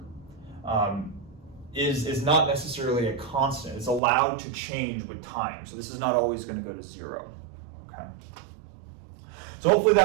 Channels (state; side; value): drops out; left; at 4.0 s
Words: is not necessarily a constant. It's allowed to change with time. So this is not always going to go to 0. Okay. So hopefully